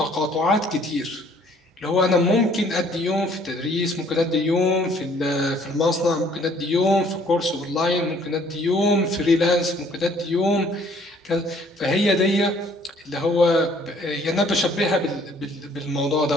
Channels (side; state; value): both; normal; correlation 0.60